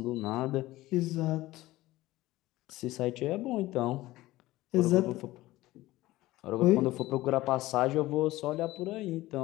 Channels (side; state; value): right; quieter; 17.6 dB